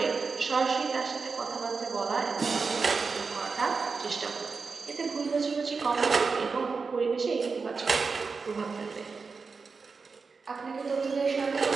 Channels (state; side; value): quieter; left; 4.7 dB